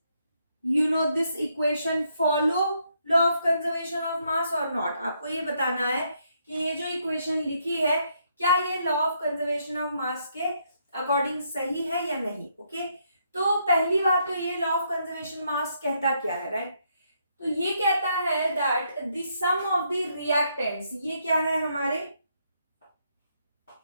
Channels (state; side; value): inverted; both; correlation -0.75